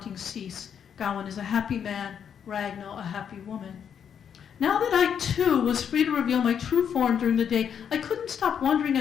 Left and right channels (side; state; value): right; quieter; 8.0 dB